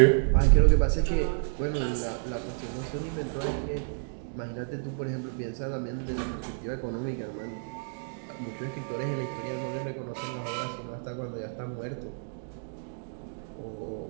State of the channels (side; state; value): left; silent; digital silence